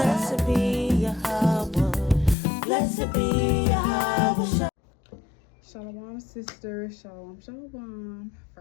be Yahawah. Blessed be Yahawah. Shalom, sisters. Shalom, shalom.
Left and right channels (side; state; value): right; drops out; at 2.4 s